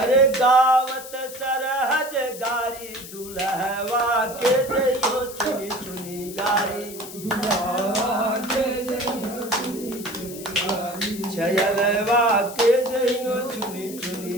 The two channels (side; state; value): left; noise; hiss, 13 dB below the sound